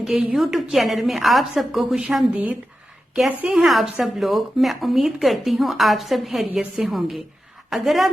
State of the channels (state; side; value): normal; both; correlation 0.91